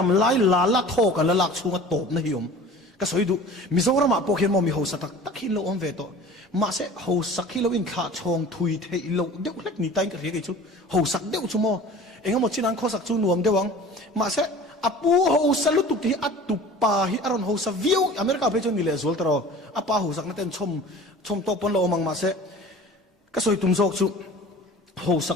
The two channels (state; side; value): normal; both; correlation 0.42